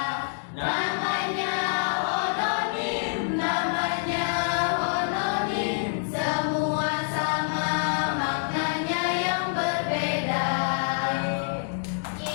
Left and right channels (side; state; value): right; silent; digital silence